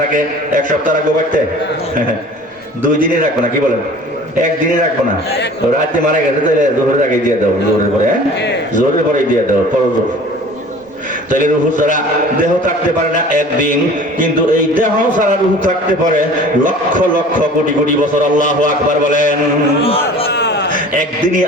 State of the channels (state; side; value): normal; both; correlation 0.45